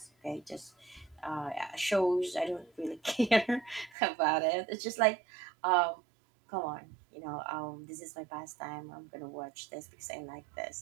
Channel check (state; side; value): drops out; left; at 4.0 s